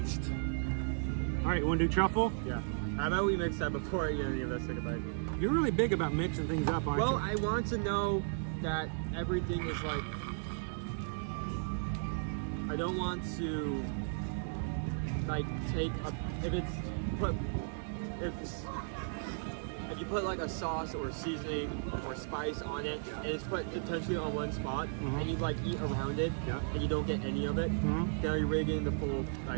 All right, you want to do truffle? Yeah. How about we mix that before any of us take a bite? You're really big about mixing things up, aren't you? Well, I want to know that everything is like... I don't want to like take a... If you put like a sauce or seasoning or spice on it, and it's put potentially on one spot, and you like eat around it, and you don't get any of it, now you're really getting the full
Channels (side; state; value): left; silent; digital silence